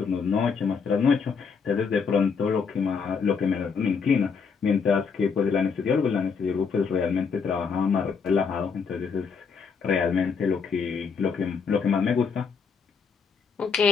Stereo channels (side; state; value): right; quieter; 5.7 dB